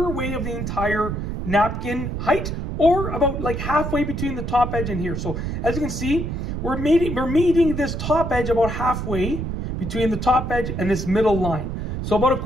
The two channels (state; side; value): noise; right; rumble, 4 dB below the sound